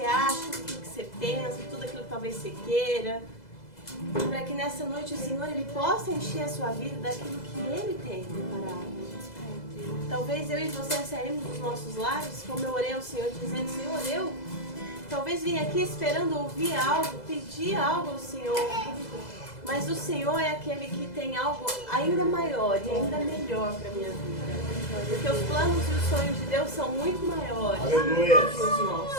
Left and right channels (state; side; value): late; right; 2.0 ms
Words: acha, tudo aquilo que você pensa, tudo aquilo que talvez você queira. Para que nessa noite o Senhor ele possa encher a sua vida daquilo que Ele tem preparado. Talvez eu e você saímos dos nossos lares, como eu orei ao Senhor, dizendo, Senhor, eu talvez vim aqui esperando ouvir algo, pedir algo ao Senhor. Mas o Senhor é aquele que tem algo ainda maior e ainda melhor para a minha vida. Porque os planos e os sonhos de Deus são muito maiores Aleluia. que os